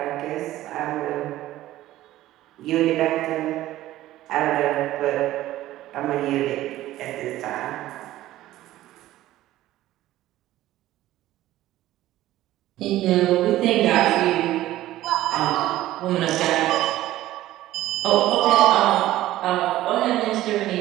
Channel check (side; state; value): left; quieter; 15.0 dB